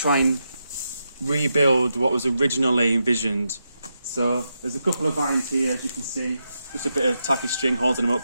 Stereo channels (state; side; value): inverted; both; correlation -0.85